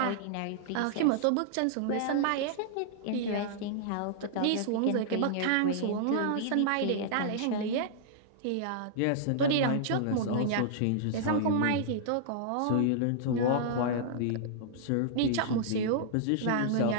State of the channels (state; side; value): different; both; correlation -0.01